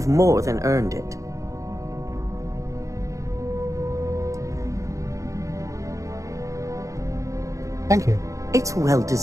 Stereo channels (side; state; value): left; late; 0.15 ms